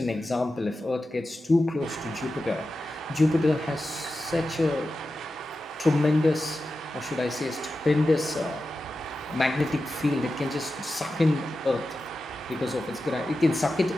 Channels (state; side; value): normal; both; correlation 0.92